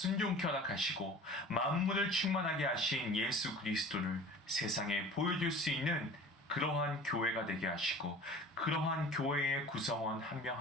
허락하시고 만물을 충만하게 하신 예수 그리스도를 세상에 보여줄 수 있는 그러한 교회가 되게 하시고 그러한 교회의 구성원 한 명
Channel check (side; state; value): both; normal; correlation 0.42